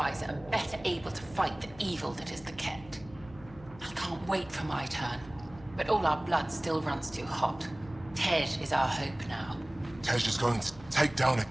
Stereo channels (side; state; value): left; noise; hum, 20 dB below the sound